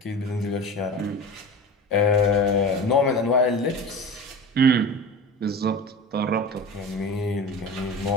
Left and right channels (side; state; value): both; normal; correlation 0.32